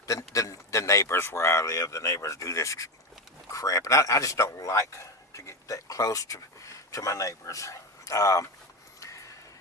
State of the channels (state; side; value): normal; both; correlation 0.16